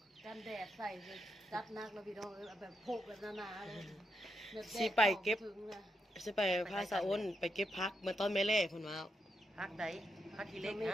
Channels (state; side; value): normal; both; correlation 0.83